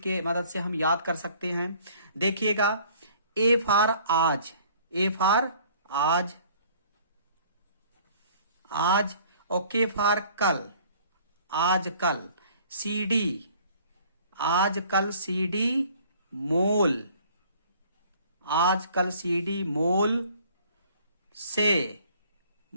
के मदद से हम याद कर सकते हैं। देखिएगा, ए फॉर आज, ए फॉर आज, आज। ओके फॉर कल, आज कल। सीडी, आज कल सीडी मोल, आज कल सीडी मोल से,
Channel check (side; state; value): both; inverted; correlation -0.54